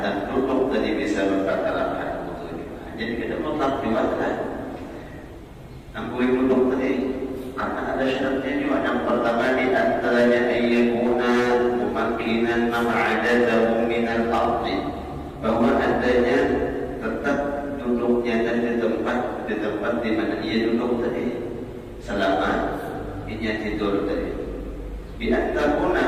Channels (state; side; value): identical; both; correlation 1.00